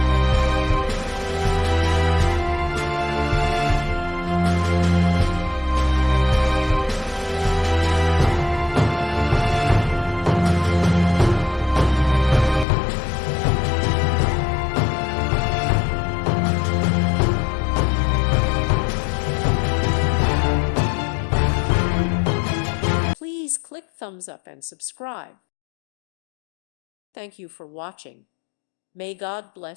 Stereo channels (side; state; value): right; drops out; at 12.7 s